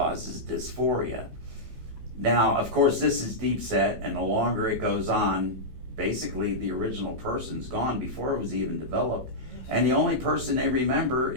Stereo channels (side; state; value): left; late; 16 ms